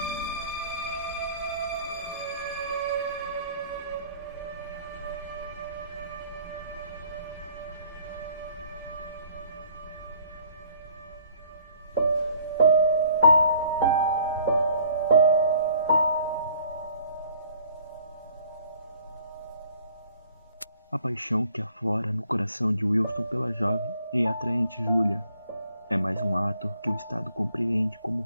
A paixão que aflora no coração de Wilston pela jovem e atraente Julia é mais um ato que o Estado compreende como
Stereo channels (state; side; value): inverted; both; correlation -0.57